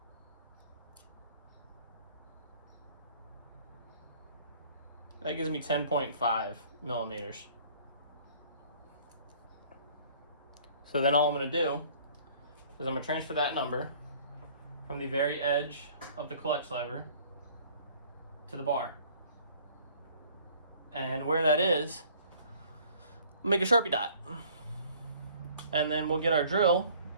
That gives me 10.5 millimeters. So then all I'm going to do is I'm going to transfer that number from the very edge of the clutch lever to the bar. And where that is, we'll make a Sharpie dot. And then we'll get our drill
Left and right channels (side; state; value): both; inverted; correlation -0.54